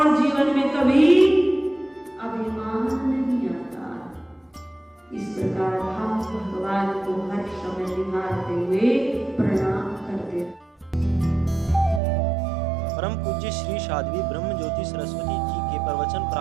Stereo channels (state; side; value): drops out; left; at 12.0 s